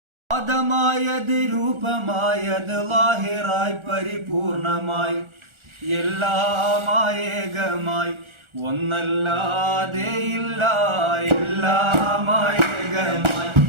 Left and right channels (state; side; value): late; left; 1.4 ms